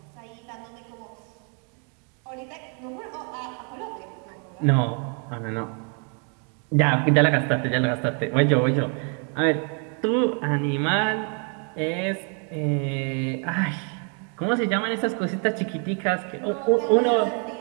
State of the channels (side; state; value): left; quieter; 39.6 dB